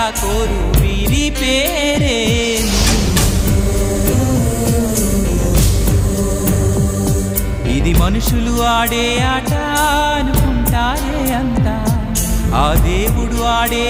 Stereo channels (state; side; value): identical; both; correlation 1.00